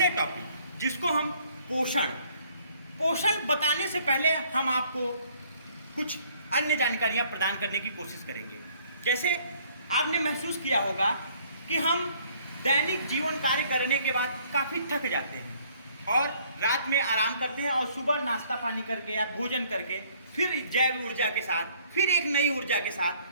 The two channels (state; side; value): inverted; both; correlation -0.61